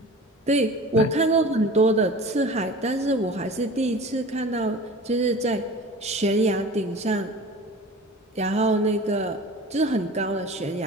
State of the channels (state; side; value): normal; both; correlation 0.38